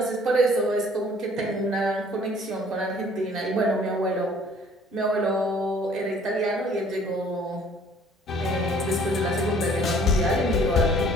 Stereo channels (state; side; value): normal; both; correlation 0.56